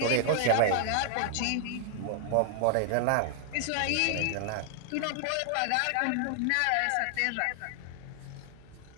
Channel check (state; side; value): different; both; correlation -0.01